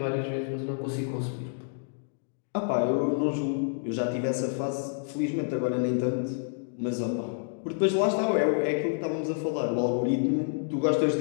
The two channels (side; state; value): right; silent; digital silence